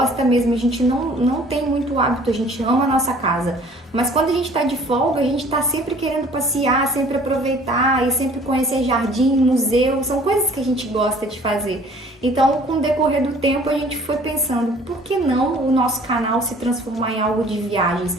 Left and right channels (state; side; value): normal; both; correlation 0.53